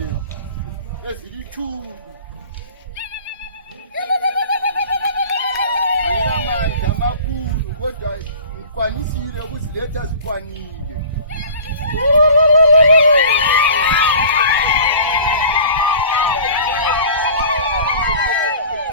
ezilithuli. Angilamandla amakhulu kodwa ngikwanisile ukuziletha zikwanile.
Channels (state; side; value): inverted; both; correlation -0.42